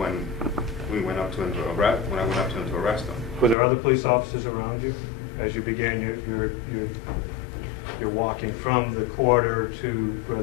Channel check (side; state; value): right; drops out; at 3.6 s